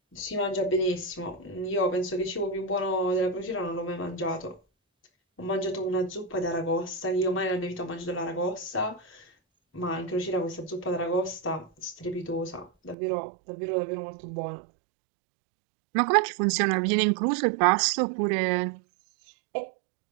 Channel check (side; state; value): left; drops out; at 13.0 s